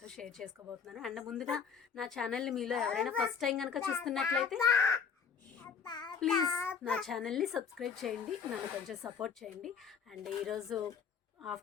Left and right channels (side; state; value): right; quieter; 6.6 dB